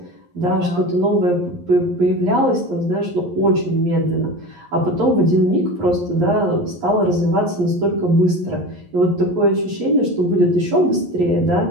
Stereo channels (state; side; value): late; left; 11 ms